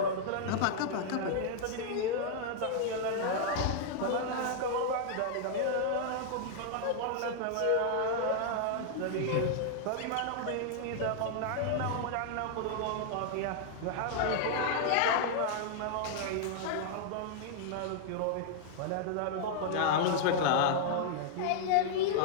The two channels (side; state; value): both; different; correlation -0.01